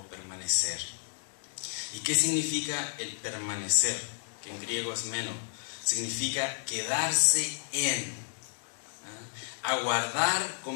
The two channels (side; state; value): right; silent; digital silence